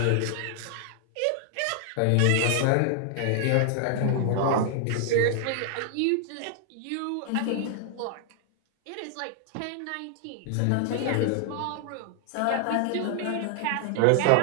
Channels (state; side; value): different; both; correlation 0.00